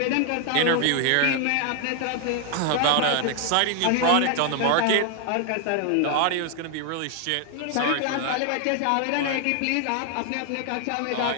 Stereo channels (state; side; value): different; both; correlation 0.00